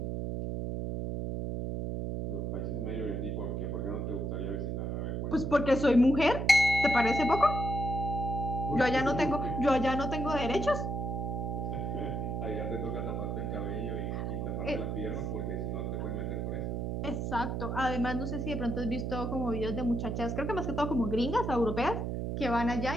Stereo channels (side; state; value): right; noise; hum, 2 dB below the sound